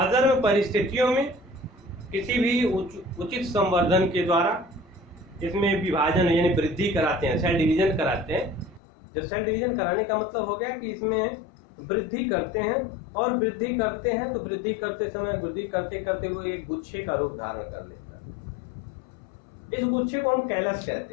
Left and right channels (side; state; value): right; drops out; at 8.8 s